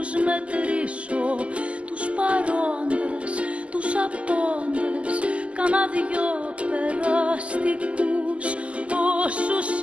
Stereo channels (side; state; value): left; late; 0.061 ms